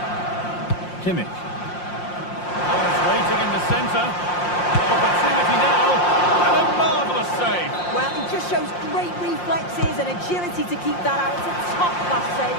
Kimmich. Oh, it's waiting in the centre. Opportunity now. And a marvellous save. Well, he just shows great reflexes and agility to keep that out. It's a top-class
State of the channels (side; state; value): right; late; 5.7 ms